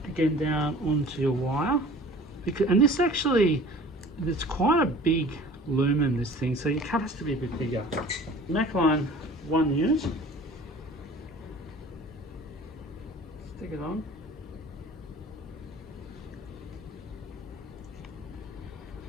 again down onto your wire. And this actually, it's quite a big lumen, this thing, so your cut has to be a bit bigger. MAC line, 1 unit. Stick it on.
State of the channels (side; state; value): both; normal; correlation 0.45